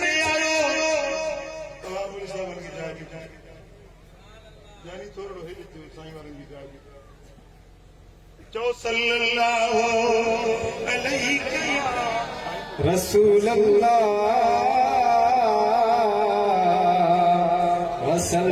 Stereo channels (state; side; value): identical; both; correlation 1.00